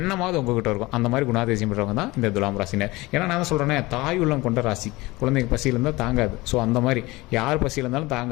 உங்ககிட்ட இருக்கும். அந்த மாதிரி குணாதிசயம் பெற்றவங்க தான் இந்த துலாம் ராசினர். ஏன்னா நான் தான் சொல்கிறேன்னே, தாய் உள்ளம் கொண்ட ராசி. குழந்தைங்க பசியில் இருந்தால் தாங்காது. ஸோ அந்த மாதிரி யார் பசியில் இருந்தாலும்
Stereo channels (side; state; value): right; quieter; 21.4 dB